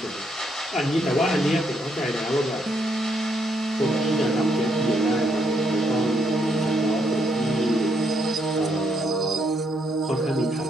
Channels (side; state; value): both; normal; correlation 0.75